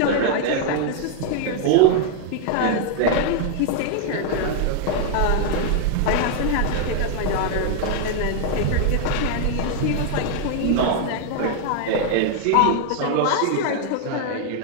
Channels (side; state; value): both; different; correlation 0.00